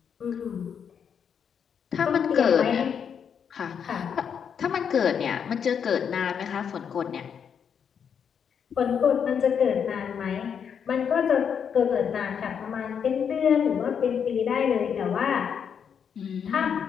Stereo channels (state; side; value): quieter; right; 7.4 dB